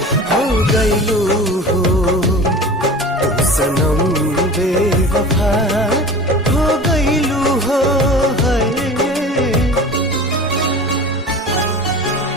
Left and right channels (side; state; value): both; normal; correlation 0.37